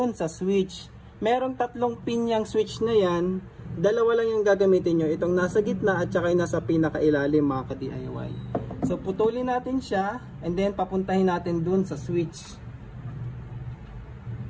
sa switch. Merong 3 pin yung switch na yan. Dalawa lang yung gagamitin nyo. Itong nasa gitna at saka yung nasa pinakailalim mga ka-DIY. So putulin natin siya and then papuntahin natin dun sa switch.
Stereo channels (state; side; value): identical; both; correlation 1.00